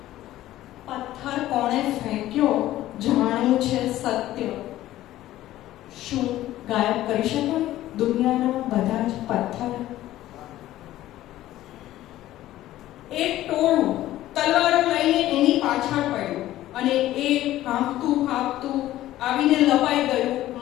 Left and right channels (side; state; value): right; quieter; 14.5 dB